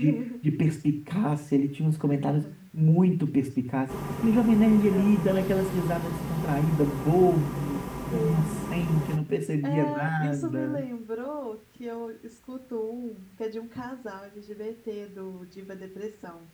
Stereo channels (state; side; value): identical; both; correlation 1.00